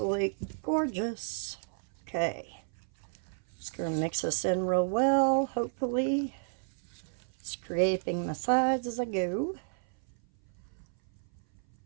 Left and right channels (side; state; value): left; silent; 56 dB below the other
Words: gorgeous. Okay. Just going to mix this in real well, hopefully. Scraping my sides as I go.